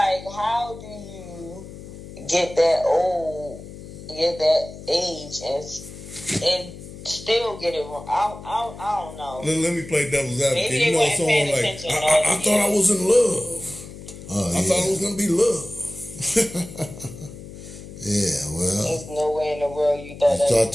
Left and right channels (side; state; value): left; noise; hum, 14 dB below the sound